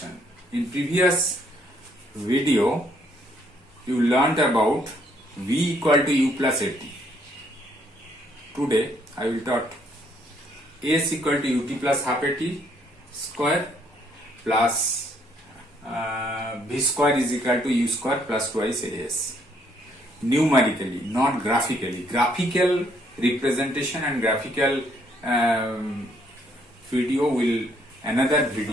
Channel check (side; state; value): both; normal; correlation 0.68